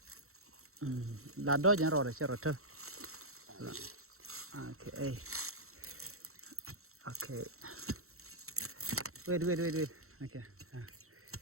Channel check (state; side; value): late; left; 0.63 ms